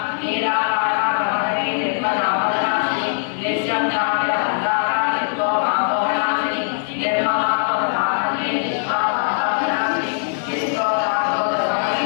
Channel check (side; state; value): right; silent; digital silence